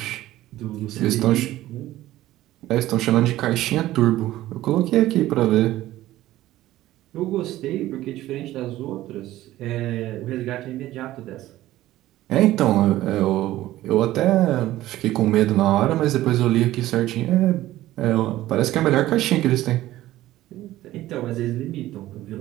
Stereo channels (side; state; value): left; quieter; 15.3 dB